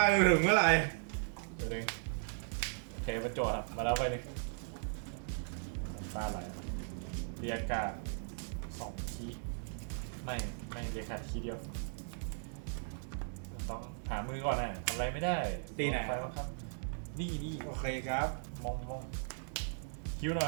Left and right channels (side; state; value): left; silent; 53 dB below the other